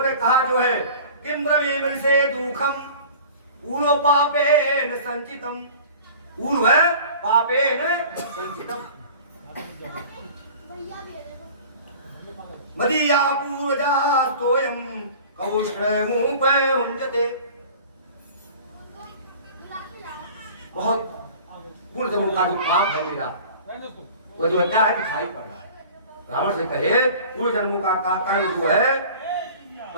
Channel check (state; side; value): inverted; both; correlation -0.43